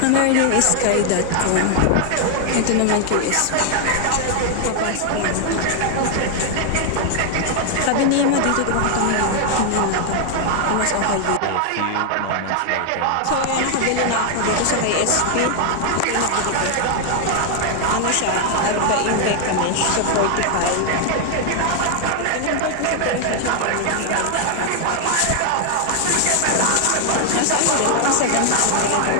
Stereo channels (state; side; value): different; both; correlation 0.00